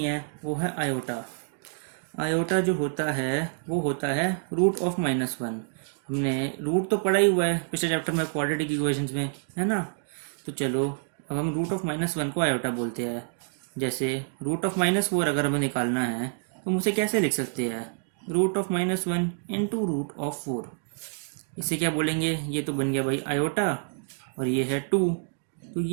है वो है आयोटा। आयोटा जो होता है वो होता है रूट ऑफ -1। हमने रूट तो पढ़ा ही हुआ है पिछले चैप्टर में, क्वाड्रेटिक इक्वेशंस में, है ना। तो चलो अब हम रूट ऑफ -1 को आयोटा बोलते हैं। जैसे रूट ऑफ -4 अगर हमें निकालना है तो हम उसे कैसे लिख सकते हैं? Root of -1 into root of 4। इसे क्या बोलेंगे? ये तो बन गया भाई आयोटा, और ये है 2, तो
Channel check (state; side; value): silent; left; digital silence